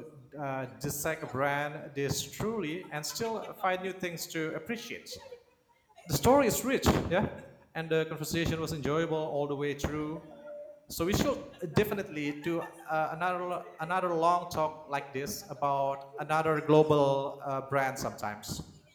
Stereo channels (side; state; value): both; identical; correlation 1.00